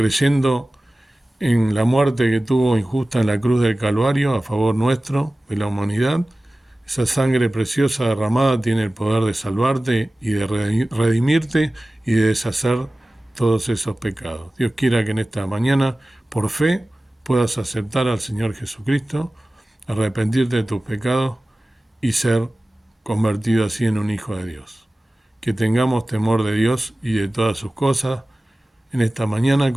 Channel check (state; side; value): normal; both; correlation 0.97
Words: en la muerte que tuvo injusta en la cruz del Calvario a favor nuestro, de la humanidad, esa sangre preciosa derramada tiene el poder de salvarte y de redimirte y de deshacer todos esos pecados. Dios quiera que en esta mañana, por fe, puedas aceptar al Señor Jesucristo, arrepentirte de tus pecados y ser convertido así en un hijo de Dios. Que tengamos temor de Dios y de todas sus cosas en esta mañana,